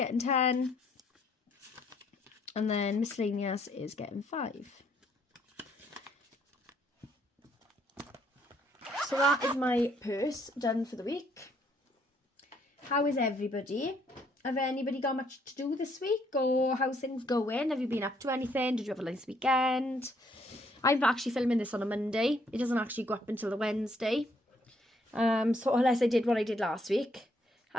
10. And then miscellaneous is getting 5. So that is my purse done for the week. How is everybody? Have anybody got much to do this week? Or how's things going? Have you been up to anything? Did you have a nice weekend? I'm actually filming this on a Monday. It doesn't actually go up until the Wednesday. So unless I did what I did last week.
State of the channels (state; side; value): normal; both; correlation 0.69